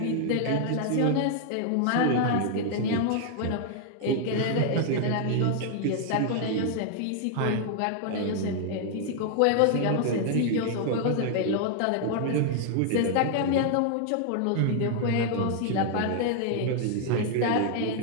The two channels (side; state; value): both; different; correlation 0.00